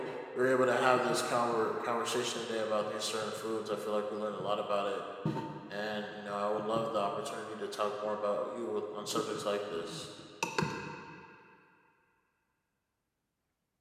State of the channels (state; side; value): identical; both; correlation 1.00